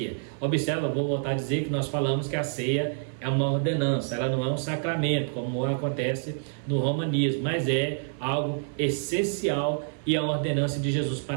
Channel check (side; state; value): left; silent; 60 dB below the other